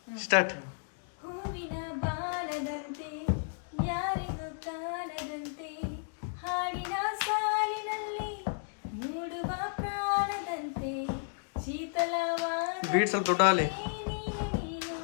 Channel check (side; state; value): right; silent; digital silence